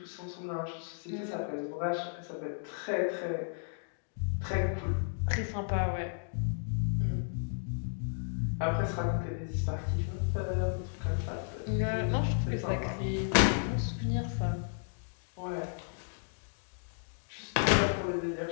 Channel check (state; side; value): silent; right; digital silence